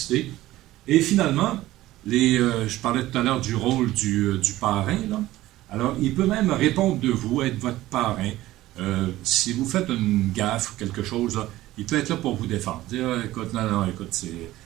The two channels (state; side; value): quieter; left; 16.1 dB